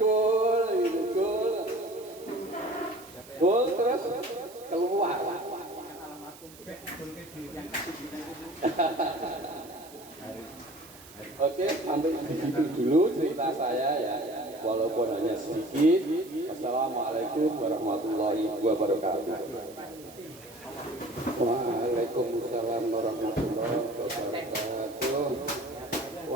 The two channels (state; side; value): noise; right; hiss, 20 dB below the sound